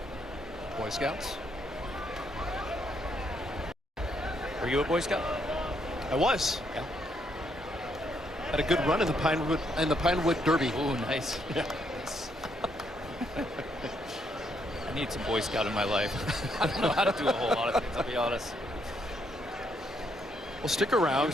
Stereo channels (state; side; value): normal; both; correlation 0.74